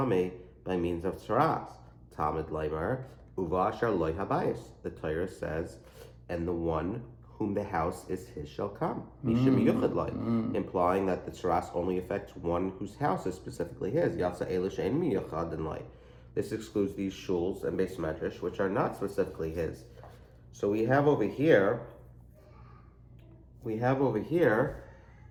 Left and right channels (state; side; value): identical; both; correlation 1.00